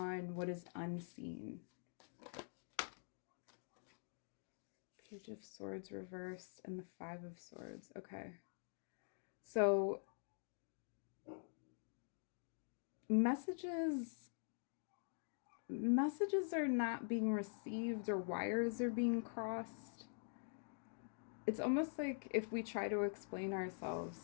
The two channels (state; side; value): silent; right; digital silence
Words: what is unseen. Page of Swords reversed and the Five of Swords. Okay. So messages are not being received or wires are being crossed. It's almost like if we try to explain